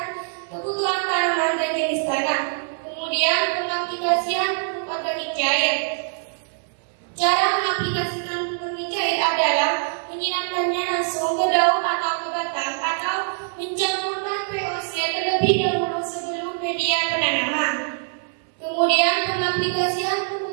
kebutuhan tanaman dan jenis tanah. Kemudian, pengaplikasian pupuk organik cair. Cara mengaplikasikan pupuk organik cair adalah menyiramkannya langsung ke daun atau ke batang atau mencampurkan VOC terlebih dahulu sebelum media penanaman. Kemudian, pengaplikasian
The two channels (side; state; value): left; silent; 63 dB below the other